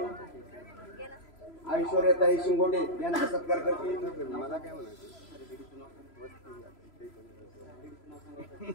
ऐश्वर्याताई शिंगोटे यांचा सत्कार करतील. मला काय म्हणायचं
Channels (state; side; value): late; right; 3.0 ms